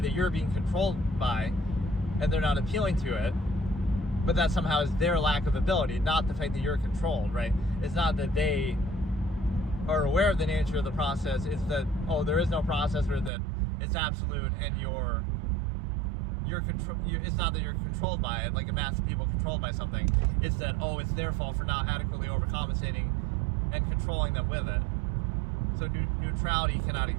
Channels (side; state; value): left; drops out; at 13.3 s